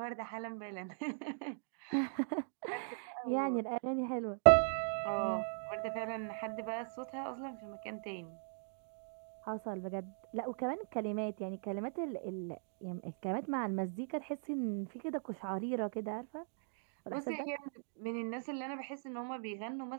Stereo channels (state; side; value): silent; left; digital silence